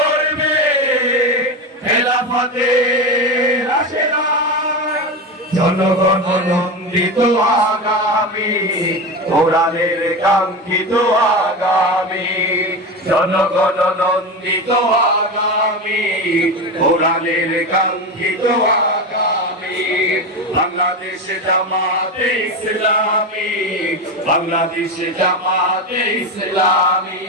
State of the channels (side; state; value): both; normal; correlation 0.20